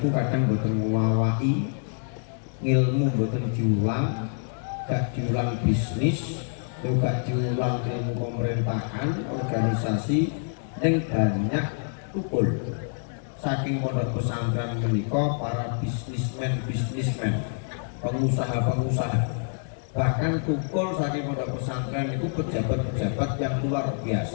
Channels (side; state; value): right; silent; 61 dB below the other